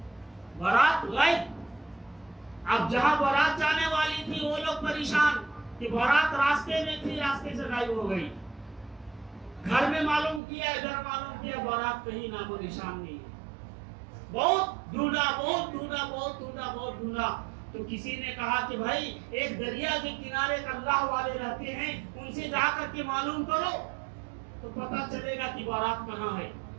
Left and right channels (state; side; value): drops out; left; at 10.4 s